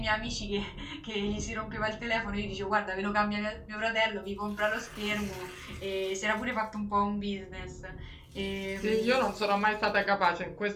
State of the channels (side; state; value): both; identical; correlation 1.00